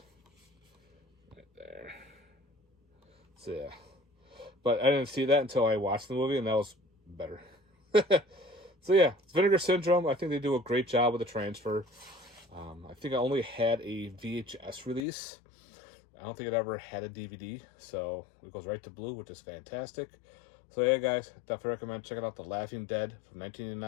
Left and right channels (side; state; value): right; drops out; at 15.1 s